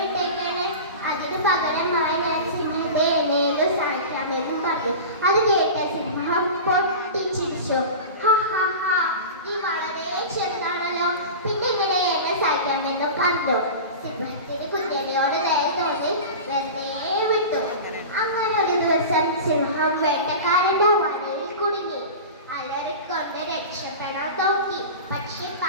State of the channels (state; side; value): inverted; both; correlation -0.31